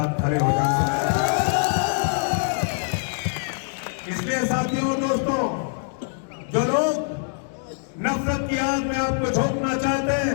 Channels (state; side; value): silent; right; 63 dB below the other